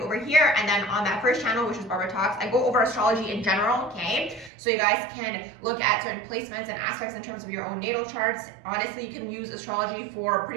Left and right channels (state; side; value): drops out; left; at 4.5 s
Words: here. And then on that first channel, which is Barbara Talks, I go over astrology in general, okay? So you guys can look at certain placements and aspects in terms of your own natal charts. Honestly, you can use astrology for